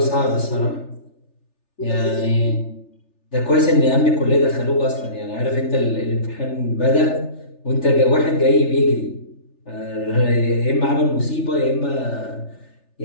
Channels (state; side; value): late; right; 3.4 ms